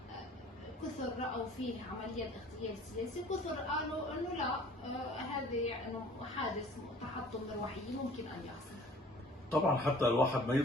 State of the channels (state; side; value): normal; both; correlation 0.50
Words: كثر رأوا فيه عملية الاغتيال السياسي، كثر قالوا إنه لا، هذا إنه حادث تحطم مروحية ممكن أن يحصل. طبعا حتى الواحد ما